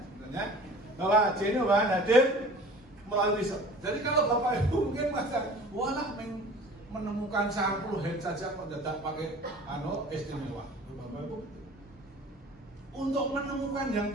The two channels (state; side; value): normal; both; correlation 0.44